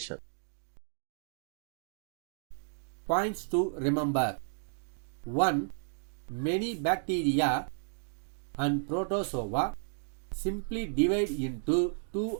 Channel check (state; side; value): silent; left; digital silence